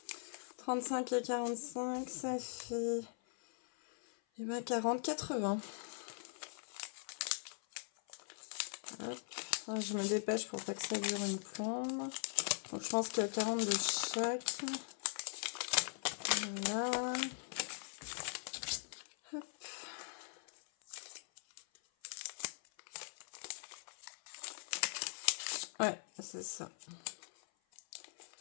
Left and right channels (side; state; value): right; silent; 50 dB below the other